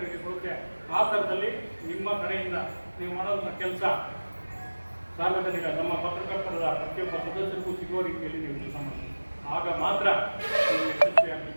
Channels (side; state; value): both; inverted; correlation -1.00